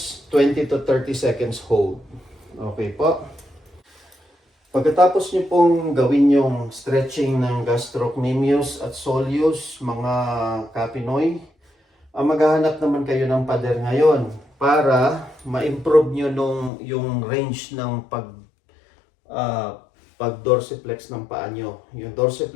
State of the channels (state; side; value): drops out; right; at 16.7 s